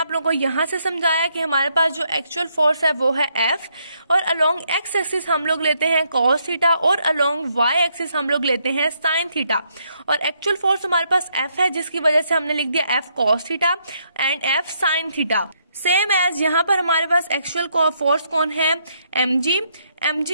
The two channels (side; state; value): both; inverted; correlation -0.74